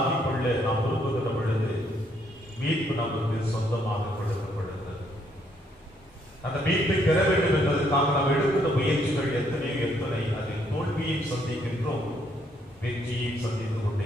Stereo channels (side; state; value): both; normal; correlation 0.70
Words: கொள்ள நாம் விரும்புகின்ற பொழுது மீட்பு நமக்கு சொந்தமாக கொடுக்கப்படுகிறது. அந்த மீட்பை பெற வேண்டும் என்பதற்காக நாம் எடுக்கின்ற முயற்சிகள் எத்தனை அதில் தோல்வியை சந்திக்கின்றோம், வெற்றியை சந்தித்துக் கொண்டே